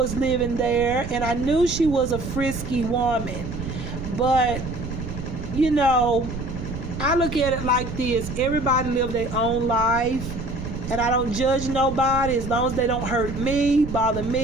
living there, and I knew she was a frisky woman. But, I look at it like this. Everybody live their own life, and I don't judge nobody as long as they don't hurt me, bother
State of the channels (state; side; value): noise; right; rumble, 7 dB below the sound